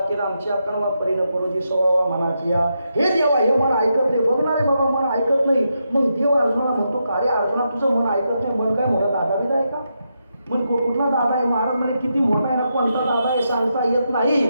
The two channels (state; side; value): inverted; both; correlation -0.84